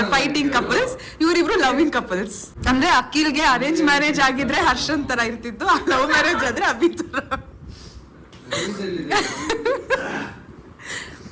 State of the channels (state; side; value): identical; both; correlation 1.00